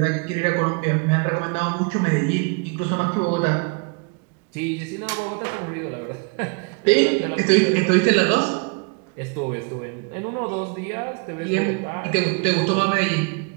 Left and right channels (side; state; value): left; quieter; 32.0 dB